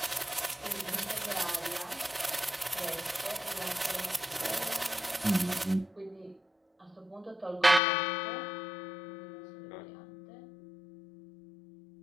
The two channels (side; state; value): right; drops out; at 7.8 s